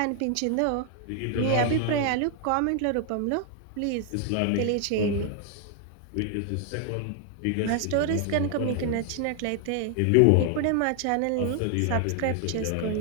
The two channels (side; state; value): both; different; correlation 0.00